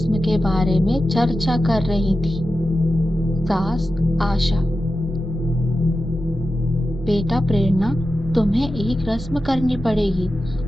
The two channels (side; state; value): both; normal; correlation 0.92